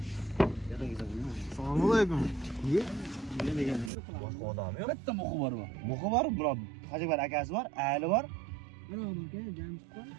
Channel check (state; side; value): drops out; left; at 3.9 s